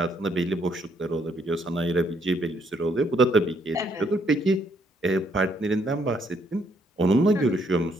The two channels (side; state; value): both; normal; correlation 0.70